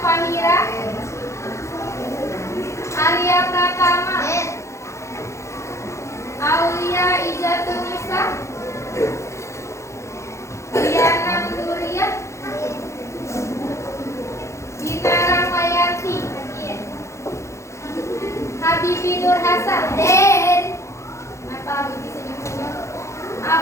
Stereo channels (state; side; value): late; right; 0.14 ms